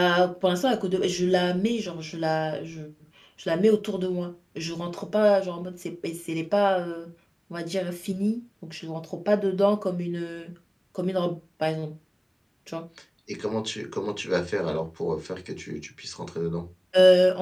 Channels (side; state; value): both; identical; correlation 1.00